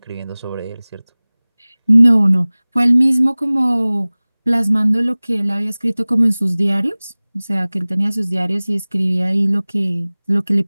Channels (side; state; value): both; inverted; correlation -1.00